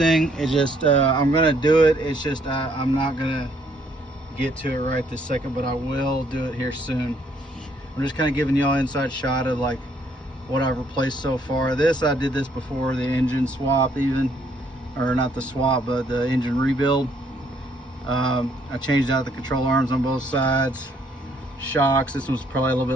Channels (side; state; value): both; normal; correlation 0.67